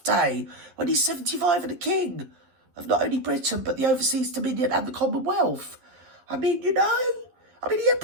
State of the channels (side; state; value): left; late; 11 ms